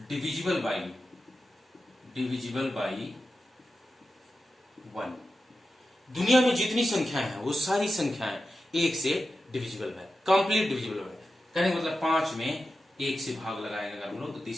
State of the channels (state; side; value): normal; both; correlation 0.92